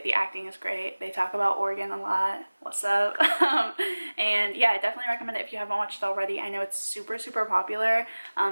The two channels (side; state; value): both; inverted; correlation -1.00